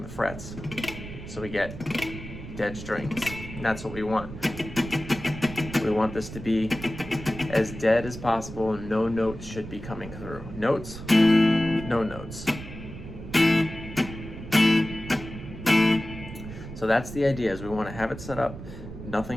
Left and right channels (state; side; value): noise; right; rumble, 11 dB below the sound